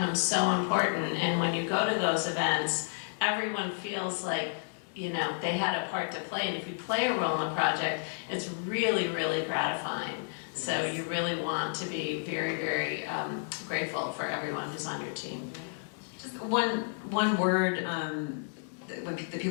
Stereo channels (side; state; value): right; silent; digital silence